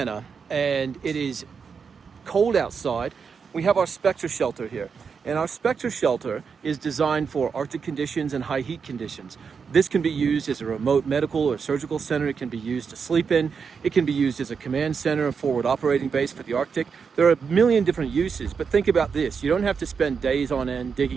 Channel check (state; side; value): quieter; left; 5.9 dB